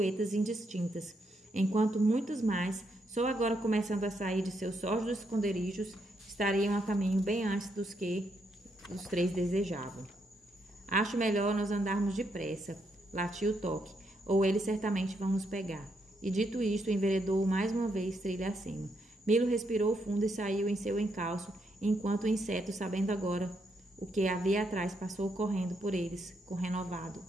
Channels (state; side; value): normal; both; correlation 0.78